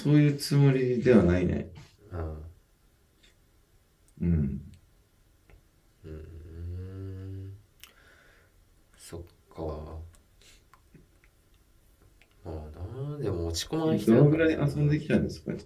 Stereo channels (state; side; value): identical; both; correlation 1.00